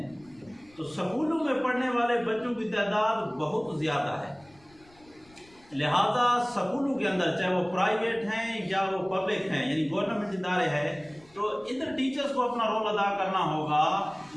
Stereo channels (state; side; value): noise; left; rumble, 29 dB below the sound